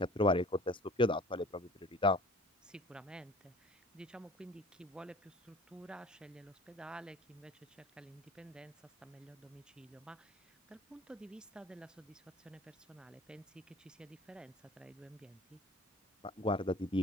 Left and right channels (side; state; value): both; normal; correlation 0.47